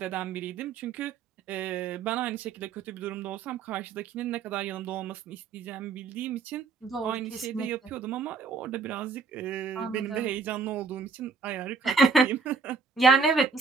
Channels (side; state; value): left; quieter; 4.8 dB